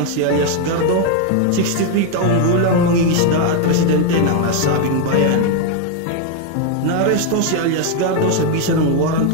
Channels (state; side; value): different; both; correlation 0.01